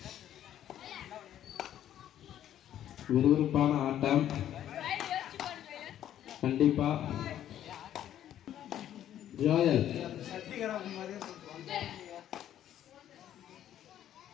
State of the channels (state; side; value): quieter; right; 11.2 dB